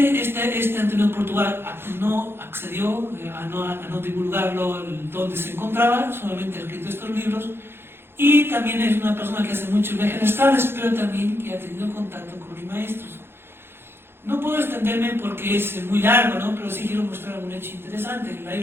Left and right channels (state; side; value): late; left; 0.11 ms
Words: Antonio Portugal no accedió a no divulgarlo donde se encontraba, solamente ha escrito estos libros, y también es una persona que hace muchos viajes astrales, pero también que ha tenido contacto con los maestros. No puedo extenderme porque es muy largo, ¿no? Pero sí quiero mostrar un hecho interesante. En la